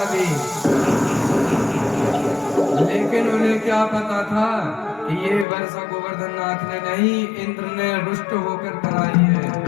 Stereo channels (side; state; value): right; drops out; at 5.5 s